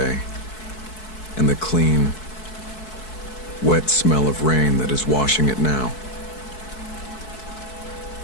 and the clean, wet smell of rain that is washing it now.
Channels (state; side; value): late; right; 4.6 ms